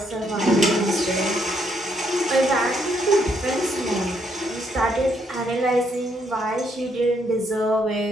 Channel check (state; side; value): normal; both; correlation 0.73